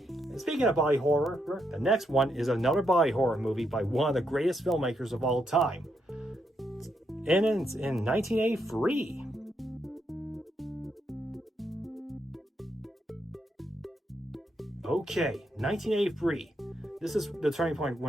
speaking of body horror, the next one is another body horror movie by one of the greatest filmmakers of all time. And it's in 1983. Okay, 1983. This is the turning point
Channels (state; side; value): normal; both; correlation 0.79